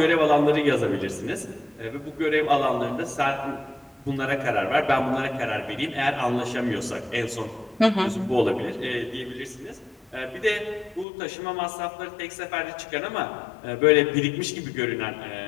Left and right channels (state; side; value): drops out; right; at 11.1 s